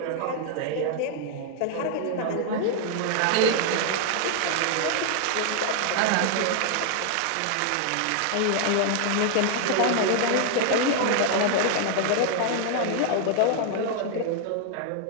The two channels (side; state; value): both; different; correlation 0.00